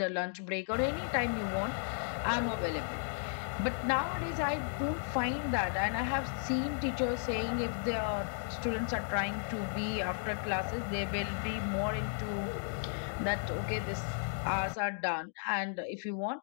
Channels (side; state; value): right; silent; digital silence